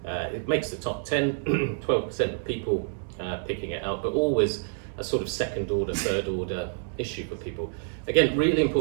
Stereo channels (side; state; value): left; silent; 60 dB below the other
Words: It makes the top 10, 12% of people picking it out, but always a sort of second order, third order issue for people. Again, really